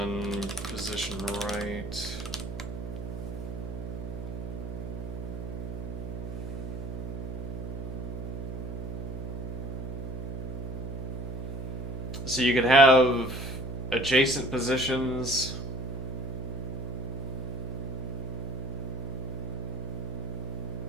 position right. So you could have adjacent positions.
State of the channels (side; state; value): right; noise; hum, 5 dB below the sound